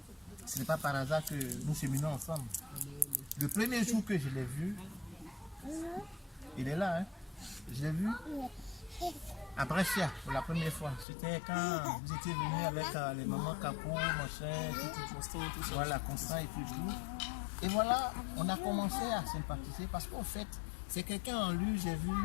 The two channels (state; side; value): drops out; right; at 11.1 s